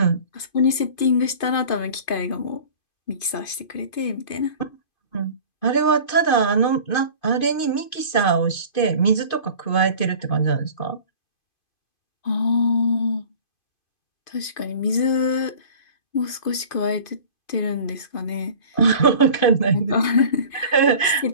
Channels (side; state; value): right; late; 2.5 ms